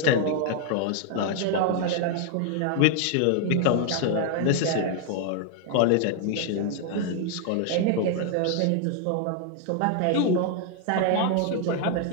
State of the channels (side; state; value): both; different; correlation 0.00